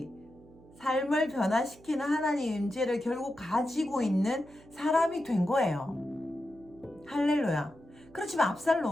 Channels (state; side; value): noise; right; hum, 24 dB below the sound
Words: 삶을 변화시키는 하나님 임재를 결국 가지고 있는 사람이 된 거예요. 할렐루야. 그렇지만